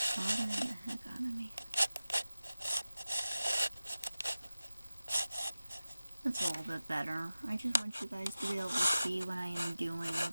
bothering the heck out of me. That's a little bit better. I just want you guys to be able to see what I am doing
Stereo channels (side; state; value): both; inverted; correlation -0.96